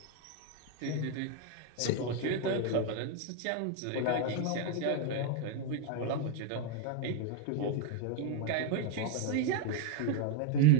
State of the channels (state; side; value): different; both; correlation 0.01